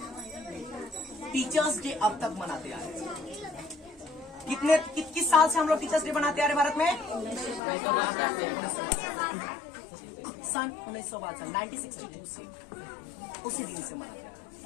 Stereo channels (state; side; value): drops out; right; at 7.6 s